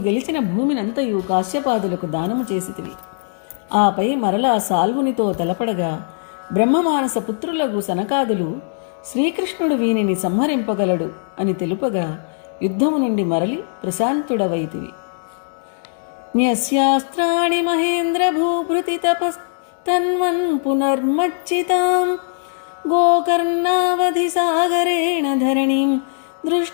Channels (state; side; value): silent; right; digital silence